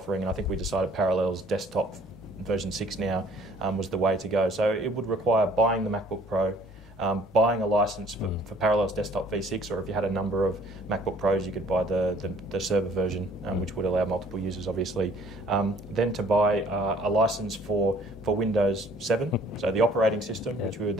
and I think we decided Parallels Desktop version 6 now was the way to go. So it would require buying the MacBook Pro, buying a license for Parallels Desktop v6, or if you had a number of MacBook Pros, you could buy the server version, which would allow multiple users, obviously. Then to buy a license for Windows 7, so the operating system, which we would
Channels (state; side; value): normal; both; correlation 0.56